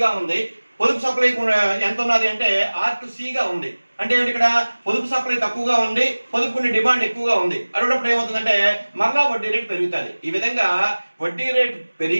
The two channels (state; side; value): inverted; both; correlation -1.00